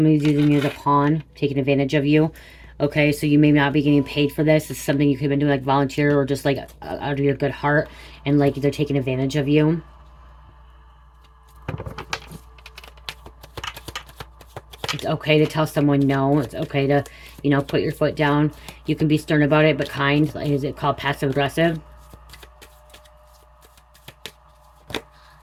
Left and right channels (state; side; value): identical; both; correlation 1.00